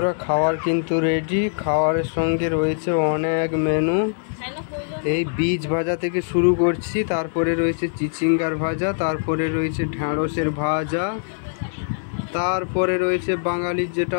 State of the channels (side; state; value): right; silent; digital silence